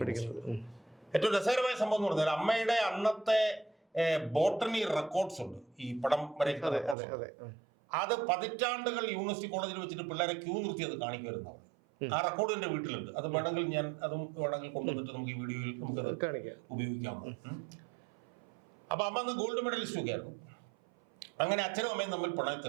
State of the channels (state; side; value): drops out; left; at 7.0 s